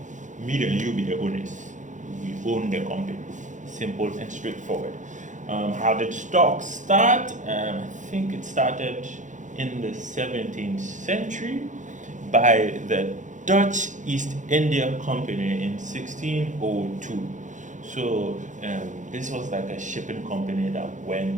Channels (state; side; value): late; left; 0.36 ms